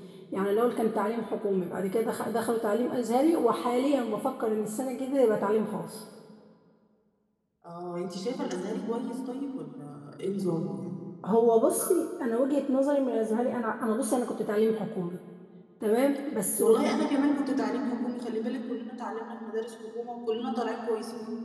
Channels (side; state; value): both; identical; correlation 1.00